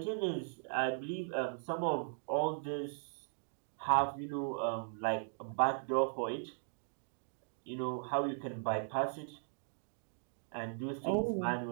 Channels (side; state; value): left; silent; digital silence